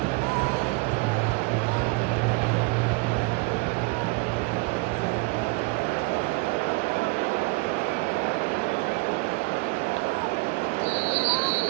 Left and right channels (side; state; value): left; quieter; 28.0 dB